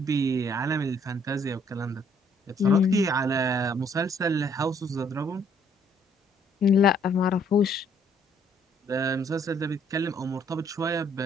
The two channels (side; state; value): both; normal; correlation 0.65